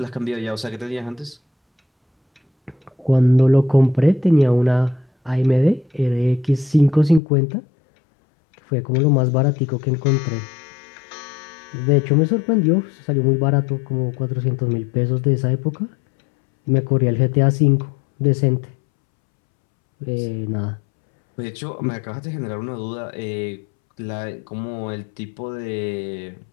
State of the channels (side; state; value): right; drops out; at 7.2 s